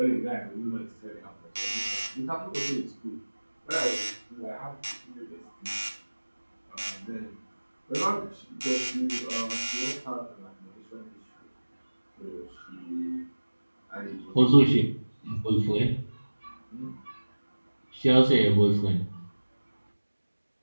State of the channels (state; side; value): inverted; both; correlation -1.00